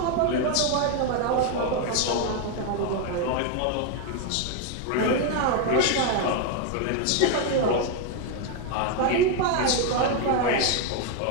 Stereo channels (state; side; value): different; both; correlation 0.01